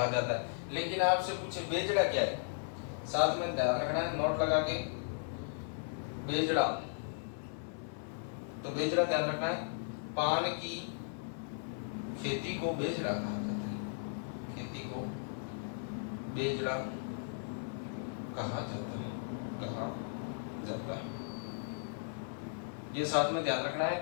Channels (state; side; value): silent; right; 54 dB below the other